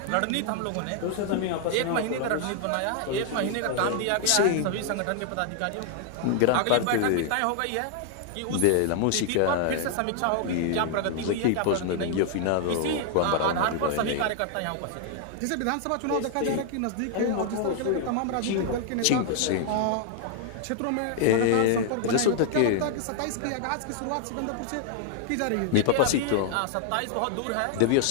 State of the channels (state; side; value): different; both; correlation 0.00